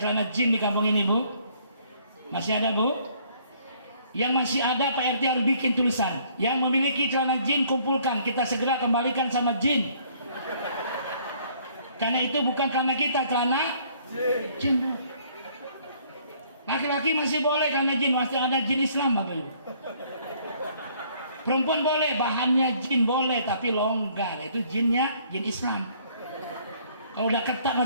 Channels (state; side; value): inverted; both; correlation -0.61